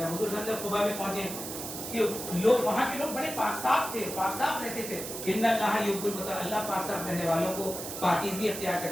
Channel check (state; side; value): noise; right; hiss, 7 dB below the sound